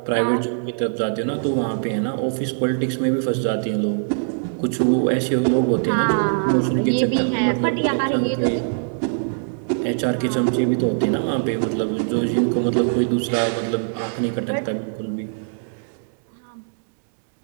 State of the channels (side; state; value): left; silent; digital silence